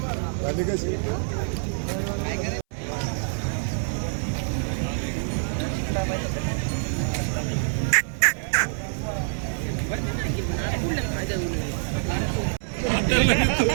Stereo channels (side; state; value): left; silent; 61 dB below the other